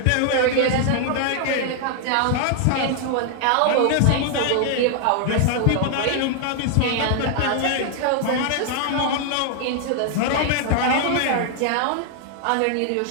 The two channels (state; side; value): different; both; correlation 0.00